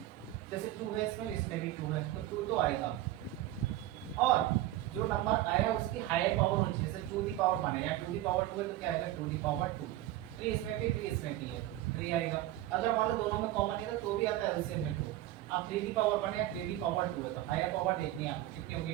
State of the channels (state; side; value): quieter; left; 14.7 dB